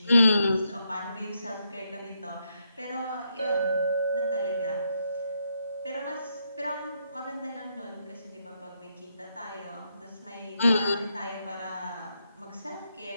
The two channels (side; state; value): both; inverted; correlation -0.80